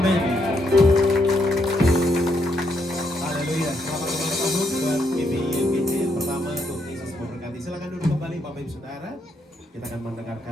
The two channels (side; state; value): both; normal; correlation 0.76